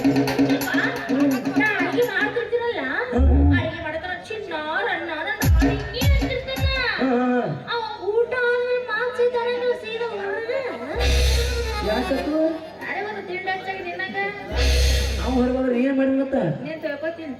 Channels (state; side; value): identical; both; correlation 1.00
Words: ಅಡಿಗೆ ಮಾಡ್ತಿರ್ತೀರಲ್ಲ ಅಡಿಗೆ ಮಾಡತಾರ ಚಿನ್ನ ರನ್ನ ಹಿಂಗೆ ಅಂತಿರ್ತಾನ ಅವ ಊಟ ಆದ್ಮೇಲೆ ಮಾನ್ಸಿದ್ದಾನೆ ಸೀದಾ ಹೊರಗೆ ಯಾಕತ್ತು ಅರೆ ಒಂದು ತಿಂಡಿ ಹಚ್ಚಾಗಿ ನಿನ್ನಂಗ ನಾವು ಹೊರಗೋದ್ರೆ ಏನ್ ಮಾಡಿ ಮತ್ತ ನೀನ್ ತಿಳ್ಕೊತೀನಿ